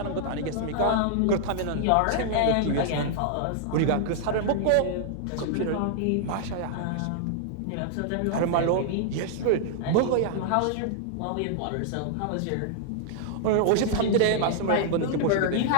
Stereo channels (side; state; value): both; different; correlation -0.01